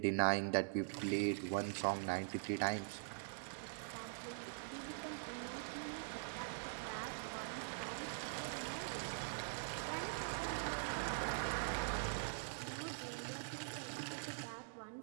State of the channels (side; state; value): left; silent; digital silence